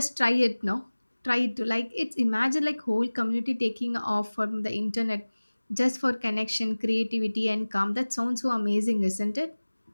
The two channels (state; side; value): inverted; both; correlation -1.00